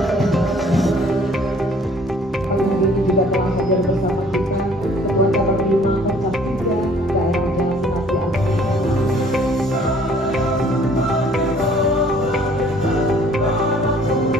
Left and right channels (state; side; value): normal; both; correlation 0.57